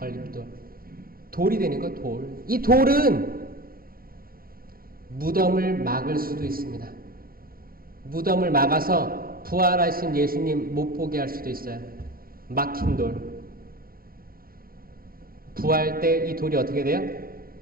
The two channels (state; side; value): late; left; 0.43 ms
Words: 돌이 되는 거예요. 돌. 이 돌은 무덤을 막을 수도 있습니다. 무덤을 막아서 부활하신 예수님 못 보게 할 수도 있어요. 막힌 돌. 부활 때 이 돌이 어떻게 돼요?